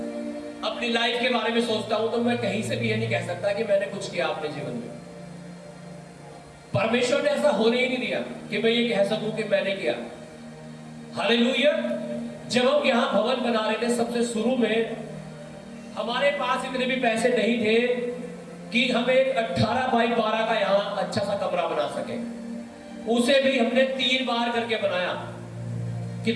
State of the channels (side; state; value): both; identical; correlation 1.00